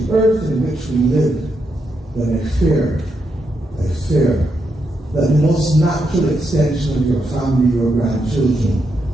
the earth in which we live, then I fear that the most natural extension of your family, your grandchildren,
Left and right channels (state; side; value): normal; both; correlation 0.82